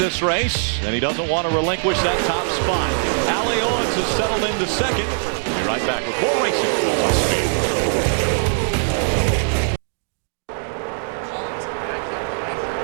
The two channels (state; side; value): silent; left; digital silence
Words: race, and he doesn't want to relinquish that top spot. Allie Owens has settled into second. We'll be right back with more racing on Speed.